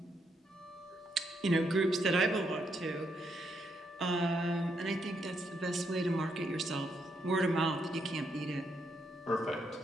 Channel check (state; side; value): normal; both; correlation 0.77